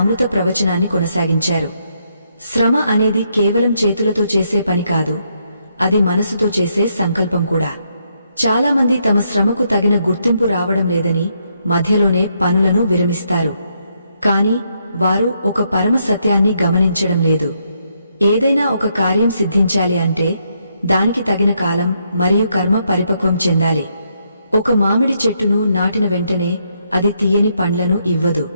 ప్రవచనాన్ని కొనసాగించారు. శ్రమ అనేది కేవలం చేతులతో చేసే పని కాదు, అది మనసుతో చేసే సంకల్పం కూడా. చాలామంది తమ శ్రమకు తగిన గుర్తింపు రావడం లేదని మధ్యలోనే పనులను విరమిస్తారు. కాని వారు ఒక పరమ సత్యాన్ని గమనించడం లేదు. ఏదైనా ఒక కార్యం సిద్ధించాలి అంటే దానికి తగిన కాలం మరియు కర్మ పరిపక్వం చెందాలి. ఒక మామిడి చెట్టును నాటిన వెంటనే అది తీయని పండ్లను ఇవ్వదు.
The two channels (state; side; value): inverted; both; correlation -0.76